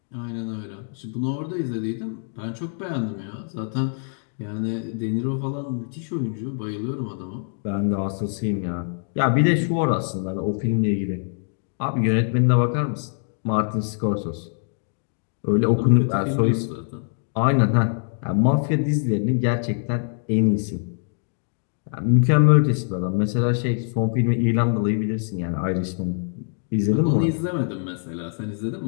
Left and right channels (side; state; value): right; silent; digital silence